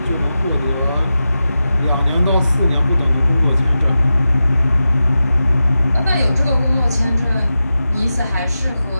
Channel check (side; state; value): both; inverted; correlation -0.92